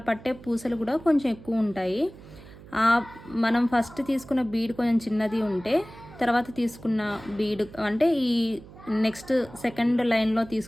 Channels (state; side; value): noise; right; hum, 19 dB below the sound